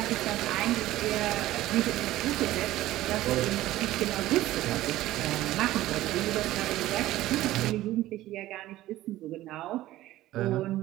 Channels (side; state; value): left; quieter; 15.5 dB